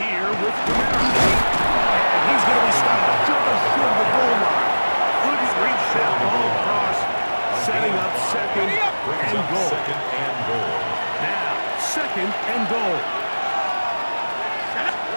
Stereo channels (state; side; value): inverted; both; correlation -1.00